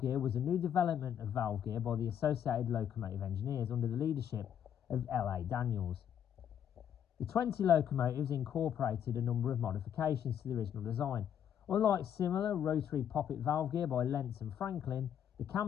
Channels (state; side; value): quieter; right; 9.3 dB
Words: gear was a new development of valve gear by the Associated Locomotive Engineers under the leadership of L.A. Daniels. The 20 locomotives incorporated a number of modifications to the original design. Unlike similar rotary poppet valve gear by Lentz and Franklin, the